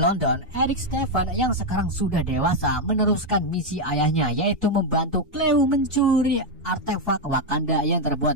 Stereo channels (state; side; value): normal; both; correlation 0.02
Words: Eric Stephen yang sekarang sudah dewasa meneruskan misi ayahnya, yaitu membantu Cleo mencuri artefak Wakanda yang terbuat